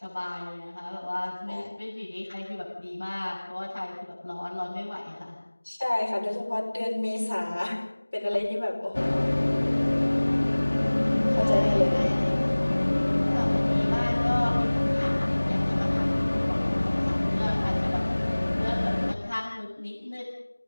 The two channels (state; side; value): inverted; both; correlation -1.00